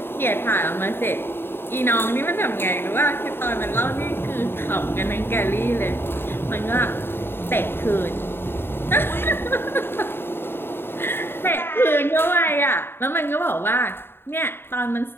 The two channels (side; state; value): right; late; 0.11 ms